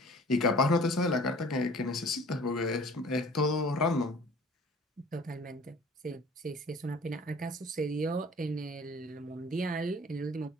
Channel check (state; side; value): normal; both; correlation 0.48